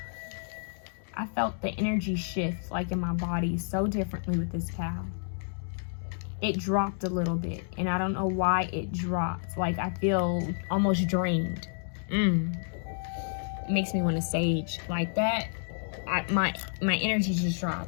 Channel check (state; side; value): silent; right; digital silence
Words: I felt the energy shift like in my body so differently with this cow. It dropped a little bit, and I don't know why it dropped. Like I feel almost drained. It makes me want to sage like that. My energy just